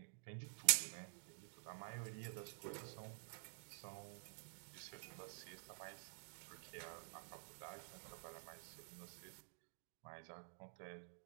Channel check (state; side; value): silent; left; digital silence